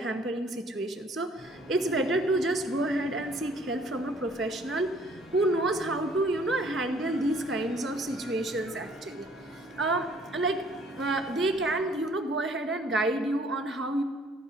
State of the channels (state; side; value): normal; both; correlation 0.59